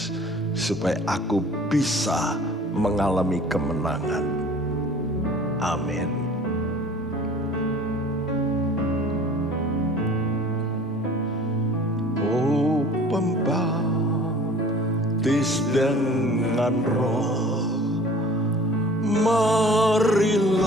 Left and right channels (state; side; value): normal; both; correlation 0.47